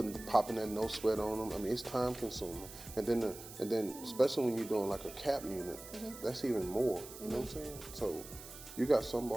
Popping that no sweat on them. I mean, it's time consuming. And then especially when you're doing like a cap unit, that's even more. You know what I'm saying? So you got some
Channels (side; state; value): right; noise; hiss, 14 dB below the sound